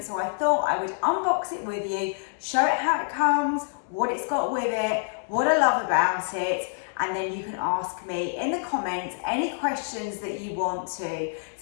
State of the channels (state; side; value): silent; right; digital silence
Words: so I thought I would unbox it with you, show it how it comes, what it's got with it, what I love about it, and then you can ask me in the comments any questions that you want to.